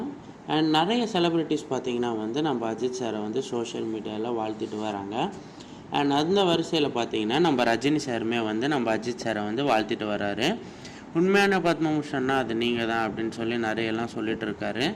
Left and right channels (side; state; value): both; identical; correlation 1.00